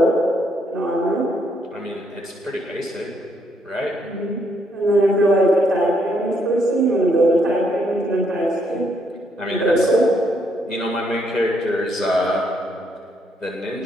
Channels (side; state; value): both; normal; correlation 0.73